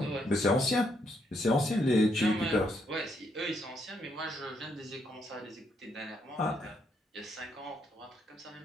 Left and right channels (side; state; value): both; normal; correlation 0.76